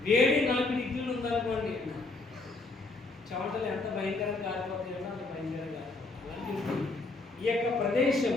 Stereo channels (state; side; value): quieter; right; 3.3 dB